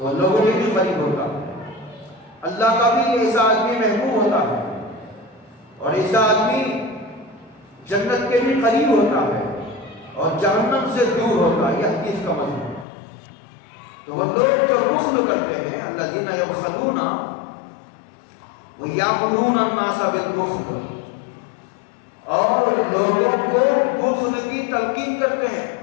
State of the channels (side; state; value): right; drops out; at 12.9 s